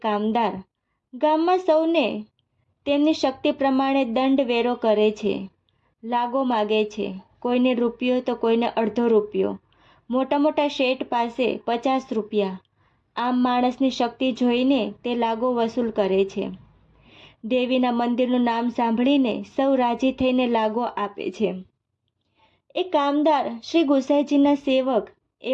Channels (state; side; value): identical; both; correlation 1.00